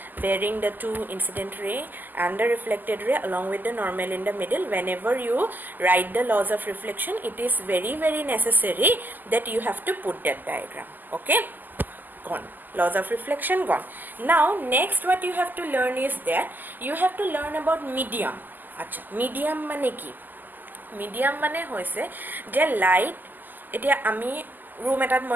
bearing the two incident ray and the reflected ray along with the normal in the middle. Whenever you write the laws of reflection, it is very, very necessary that you have to put that diagram. Okay, gone. Laws of reflection gone. Now next what you have to learn is that you have to learn about medium. Acha, medium mane ki? Medium mane hoise je light etia ami room etat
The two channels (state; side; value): late; left; 0.087 ms